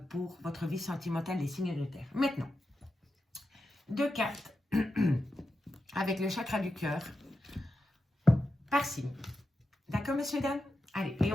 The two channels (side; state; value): both; normal; correlation 0.89